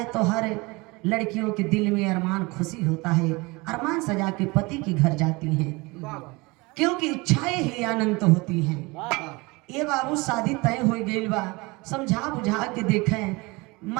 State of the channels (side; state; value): left; quieter; 24.8 dB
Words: तो हर लड़कियों के दिल में अरमान खुशी होता है, अरमान सजा के पति के घर जाती हैं क्योंकि इच्छाएं ही अनंत होती हैं। ये बाबू शादी तय हो गई बा, समझा बुझा के देखें